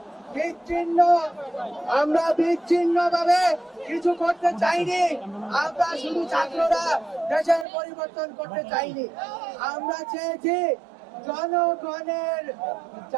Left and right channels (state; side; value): drops out; left; at 7.7 s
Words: বিচ্ছিন্ন ভাবে কিছু করতে চাইনি। আমরা শুধু ছাত্ররা দেশের পরিবর্তন করতে চাইনি। আমরা চেয়েছি জনগণের